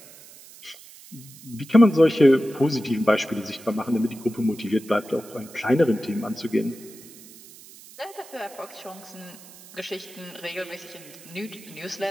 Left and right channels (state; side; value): noise; right; hiss, 20 dB below the sound